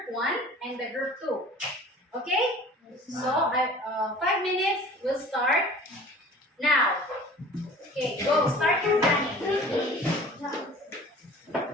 1 and the group 2. Okay? So, 5 minutes will start now. Okay, go. Start your planning.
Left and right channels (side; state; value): both; normal; correlation 0.45